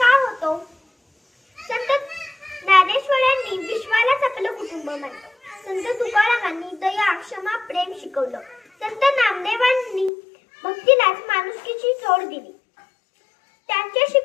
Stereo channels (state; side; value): drops out; right; at 10.1 s